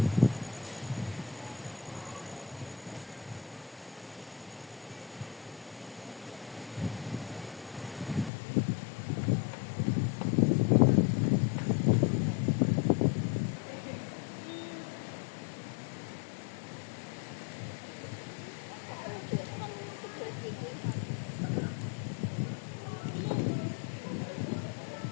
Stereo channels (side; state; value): right; drops out; at 8.3 s